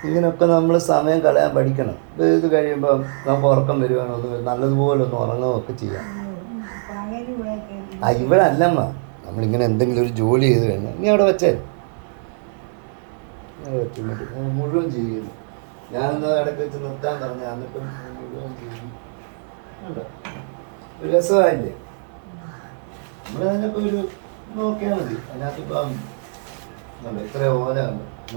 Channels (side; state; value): left; silent; digital silence